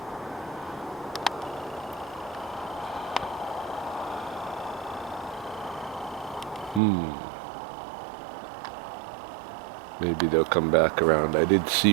Maybe they'll come back around. I did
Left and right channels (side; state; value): left; drops out; at 6.8 s